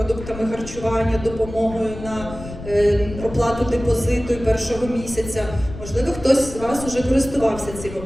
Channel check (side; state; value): left; noise; rumble, 12 dB below the sound